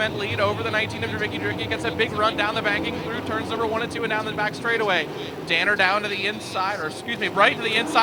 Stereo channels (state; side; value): identical; both; correlation 1.00